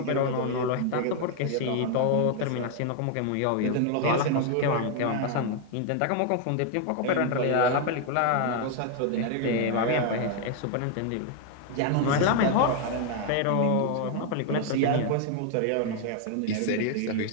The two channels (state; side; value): different; both; correlation 0.00